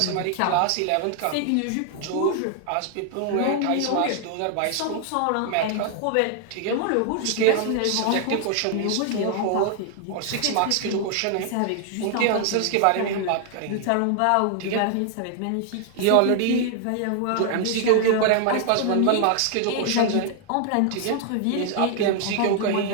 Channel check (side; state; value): both; different; correlation 0.00